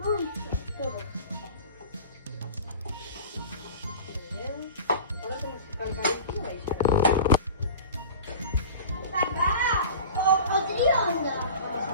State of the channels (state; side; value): inverted; both; correlation -0.37